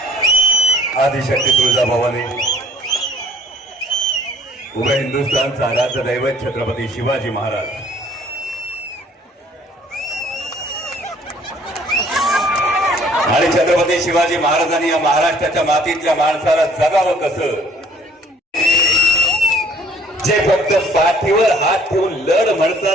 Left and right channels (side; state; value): both; normal; correlation 0.57